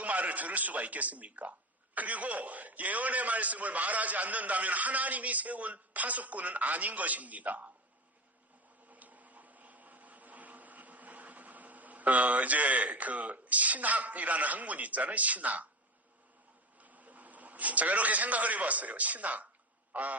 말을 들을 수가 있겠습니까? 그리고 예언의 말씀을 말하지 않는다면 하나님이 세운 파수꾼은 아닌 것입니다. 이제 신학이라는 학문이 있잖아요. 신학. 제가 이렇게 생각을 해봤어요. 신학.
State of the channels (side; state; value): both; normal; correlation 0.24